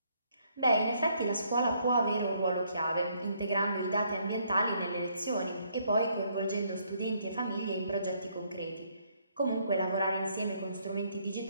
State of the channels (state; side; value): inverted; both; correlation -0.69